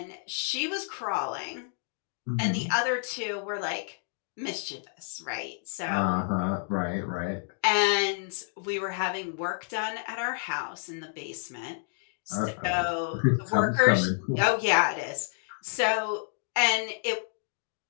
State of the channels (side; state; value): right; silent; 58 dB below the other